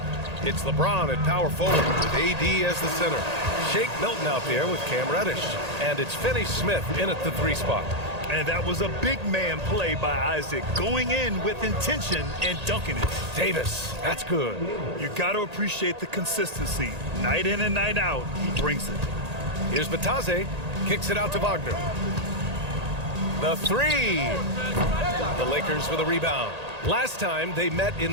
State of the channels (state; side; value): late; left; 1.8 ms